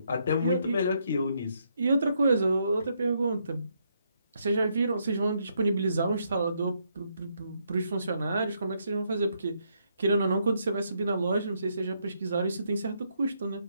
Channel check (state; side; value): inverted; both; correlation -0.75